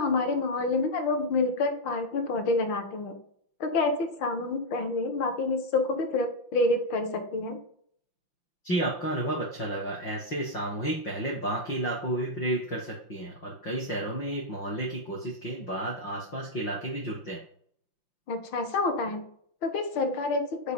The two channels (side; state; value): right; late; 5.8 ms